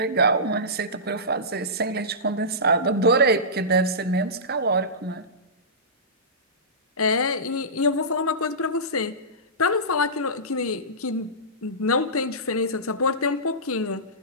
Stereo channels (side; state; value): both; normal; correlation -0.20